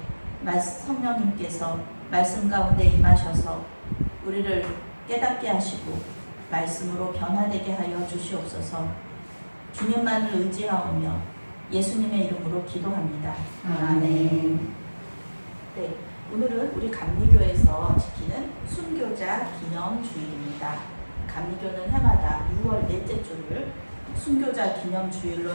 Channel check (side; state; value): both; inverted; correlation -1.00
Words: 성령님께서 말씀 가운데 임하셔서 우리를 깨닫게 하시고 말씀으로 변화되게 하여 주시옵소서. 주님만을 의지하오며 예수님의 이름으로 기도합니다. 아멘. 네, 오늘은 우리 감리교에서 지키는 순교자 기념주일입니다. 감리교는 해마다 6월 넷째 주를 순교자 기념주일로